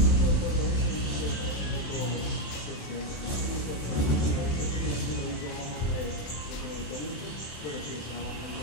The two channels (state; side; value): late; right; 27 ms